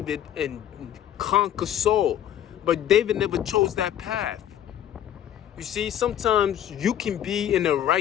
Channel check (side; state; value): right; quieter; 10.8 dB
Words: and conquer Saul. But David never chose that path. You see, sometimes you can be in the